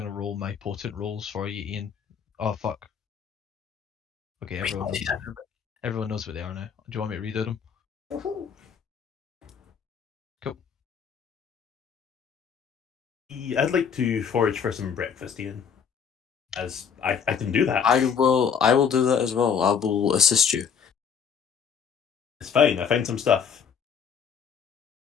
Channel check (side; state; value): right; quieter; 7.0 dB